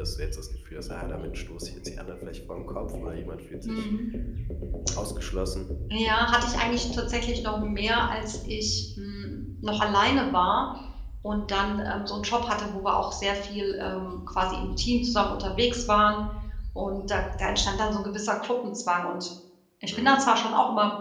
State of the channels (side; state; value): both; identical; correlation 1.00